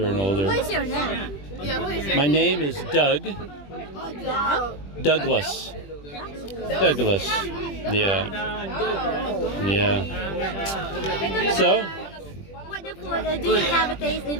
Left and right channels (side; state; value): right; late; 21 ms